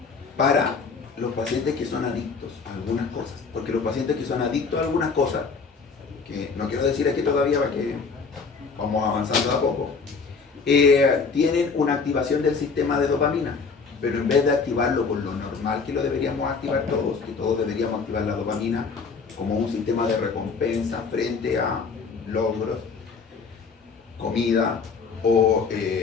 los pacientes que son adictos a algunas cosas. Porque los pacientes que son adictos a algunas cosas, que no quiero decir aquí todavía para que vamos avanzando a poco, tienen una activación del sistema de dopamina, pero en vez de activarlo con lo normal que lo deberíamos activar todos, que todos deberíamos activar la dopamina como un sistema de recompensa frente a logros, comida o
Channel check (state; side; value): quieter; right; 5.0 dB